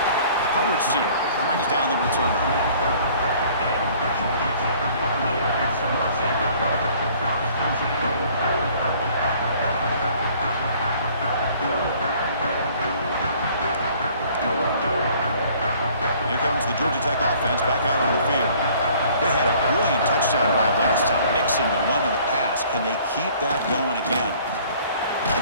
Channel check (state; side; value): inverted; both; correlation -0.55